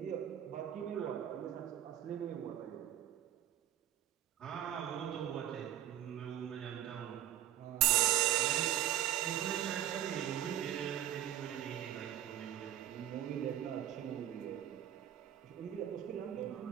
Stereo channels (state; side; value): quieter; left; 11.8 dB